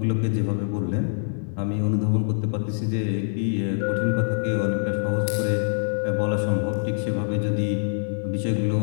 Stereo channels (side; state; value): right; silent; 62 dB below the other